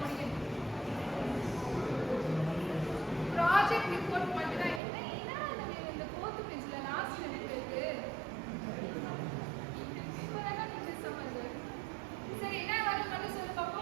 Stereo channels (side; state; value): left; drops out; at 4.8 s